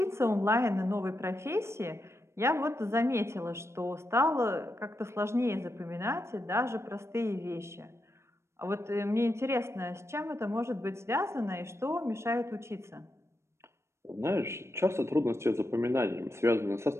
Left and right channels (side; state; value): left; late; 0.13 ms